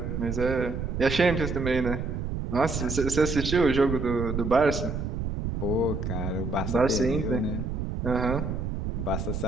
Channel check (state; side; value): noise; right; rumble, 3 dB below the sound